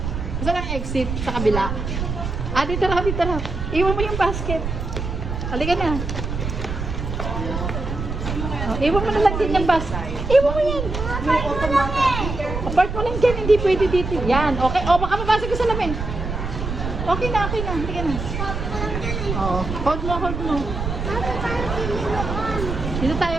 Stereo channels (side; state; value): right; noise; rumble, 4 dB below the sound